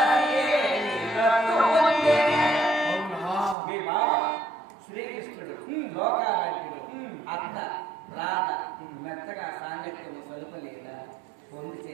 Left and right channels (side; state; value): left; drops out; at 3.6 s